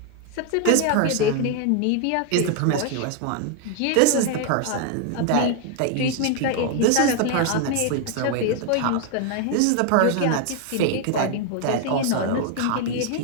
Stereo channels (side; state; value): both; different; correlation 0.01